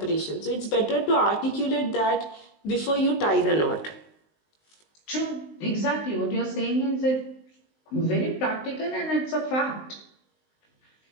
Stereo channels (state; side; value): late; right; 19 ms